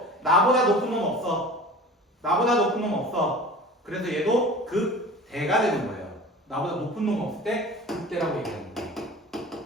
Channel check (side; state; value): both; normal; correlation 0.40